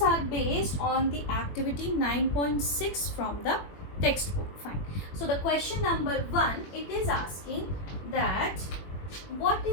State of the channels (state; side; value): late; right; 21 ms